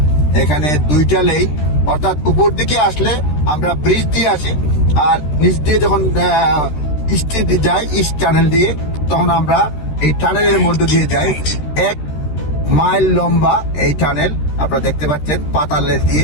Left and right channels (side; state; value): right; late; 13 ms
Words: এখানে 2টা লেন, অর্থাৎ উপর দিকে আসলে আমরা ব্রিজ দিয়ে আসি, আর নিচ দিয়ে যখন ইস্টে যাই ইস্ট টানেল দিয়ে, তখন আমরা এই টানেলের মধ্যে দিয়ে যাই। 1 মাইল লম্বা এই টানেল আপনারা দেখতে পাচ্ছেন, পাতালের দিয়ে,